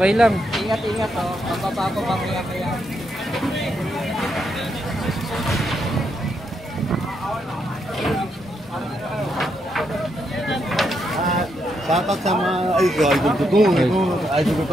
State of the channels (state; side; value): normal; both; correlation 0.79